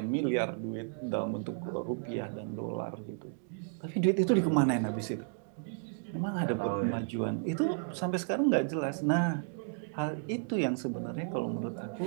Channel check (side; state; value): left; silent; digital silence